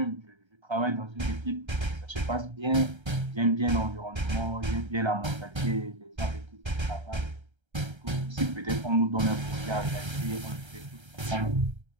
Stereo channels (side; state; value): left; late; 1.3 ms